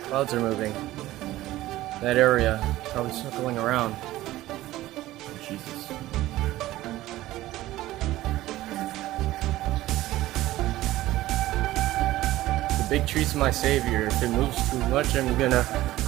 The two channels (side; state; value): left; quieter; 16.1 dB